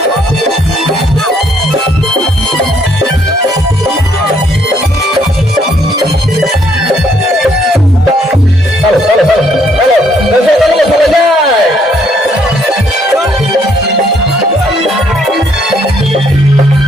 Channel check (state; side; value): normal; both; correlation 0.68